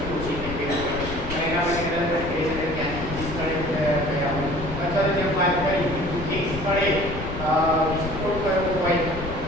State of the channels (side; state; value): left; noise; rumble, 8 dB below the sound